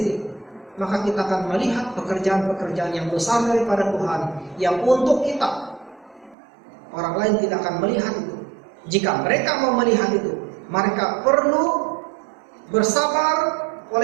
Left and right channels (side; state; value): left; drops out; at 6.4 s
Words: maka kita akan melihat pekerjaan-pekerjaan yang besar daripada Tuhan yang untuk kita. Orang lain tidak akan melihat itu. Jika mereka mau melihat itu, mereka perlu bersabar